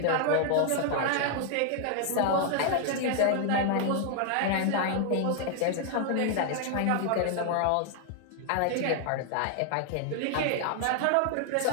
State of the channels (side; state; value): both; different; correlation 0.00